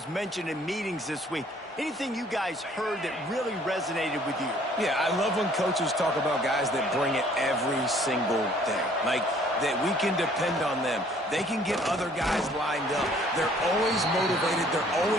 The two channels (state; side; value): normal; both; correlation 0.58